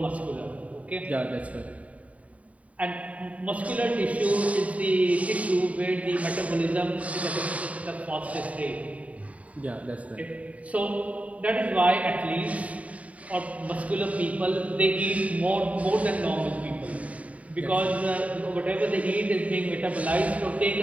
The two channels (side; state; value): left; late; 0.068 ms